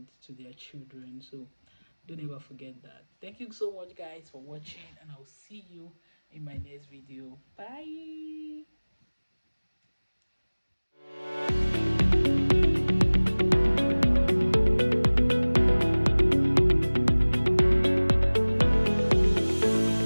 to their children. So don't ever forget that. Thank you so much, guys, for watching, and I'll see you in my next video. Bye.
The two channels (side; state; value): both; inverted; correlation -1.00